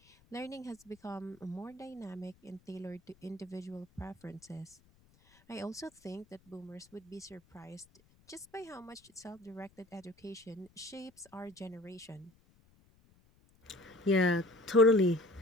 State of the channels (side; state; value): left; noise; rumble, 30 dB below the sound